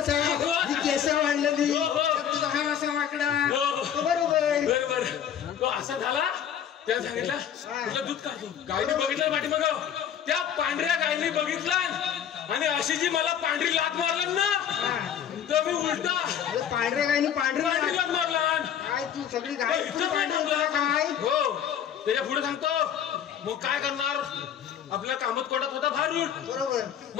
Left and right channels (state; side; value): quieter; right; 9.1 dB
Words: ही केस वाढलेली हो, हो. त्यात तुझा हा असा वाकडा हो, हो. तो बरोबर बरोबर तो असा झाला त्याने सांगितलं तुला दूध काढतो गायने बघितलं पाठीमाग त्या पांढऱ्या गायने बघितलं आणि अशी जी मला पांढरी लात मारलं ना तर मी उलटा अरे पांढरे गायनी पांढरी पांढरे लात मारला काय तू सगळी गाय इथं काय थांबला काय हो त्याच्या पुढे सांगतो मग काय करणार आपल्या कामात कोटात होता भारूट बरोबर